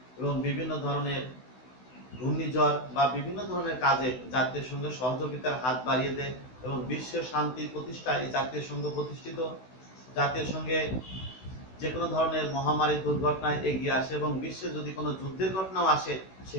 এবং বিভিন্ন ধরনের ঘূর্ণিঝড় বা বিভিন্ন ধরনের কাজে জাতীয় সংঘের সহযোগিতার হাত বাড়িয়ে দেয়, এবং বিশ্বের শান্তি প্রতিষ্ঠায় এই জাতীয় সংঘ প্রতিষ্ঠিত। জাতীয় সংঘে যে কোনো ধরনের মহামারী দুর্ঘটনায় এগিয়ে আসে, এবং বিশ্বে যদি কোনো যুদ্ধের ঘটনাও আসে,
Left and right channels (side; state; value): right; late; 16 ms